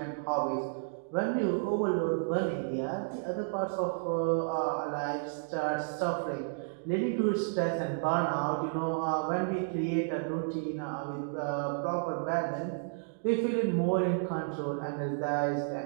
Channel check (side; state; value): left; silent; digital silence